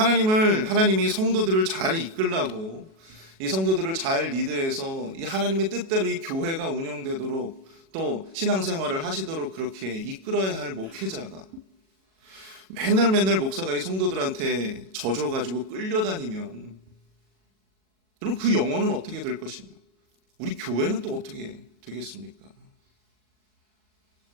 성도들을 잘 이끌라고, 이 성도들을 잘 리드해서 이 하나님의 뜻대로 이 교회가 운영되도록 또 신앙생활을 하시도록 그렇게 이끌어야 할 목회자가 맨날 목사가 이 성도들한테 져줘가지고 끌려다니면, 그럼 그 영혼은 어떻게 될 것인가? 우리 교회는 또 어떻게 되겠습니까?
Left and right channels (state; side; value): late; left; 37 ms